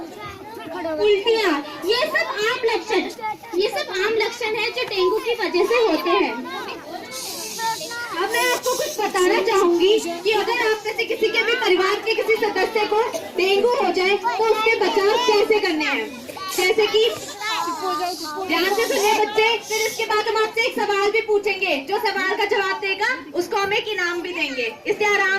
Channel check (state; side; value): identical; both; correlation 1.00